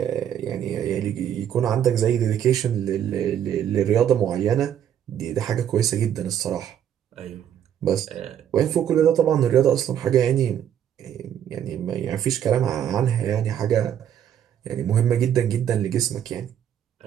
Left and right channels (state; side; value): quieter; left; 9.8 dB